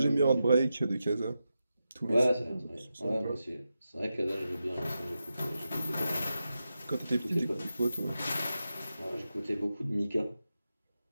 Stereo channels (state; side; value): inverted; both; correlation -0.90